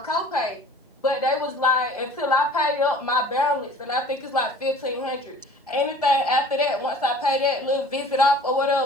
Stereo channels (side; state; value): both; normal; correlation 0.48